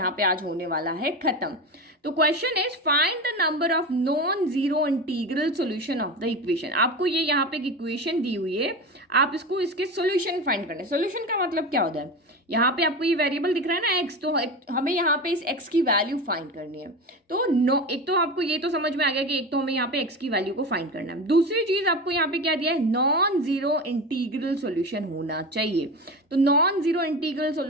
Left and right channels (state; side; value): normal; both; correlation 0.26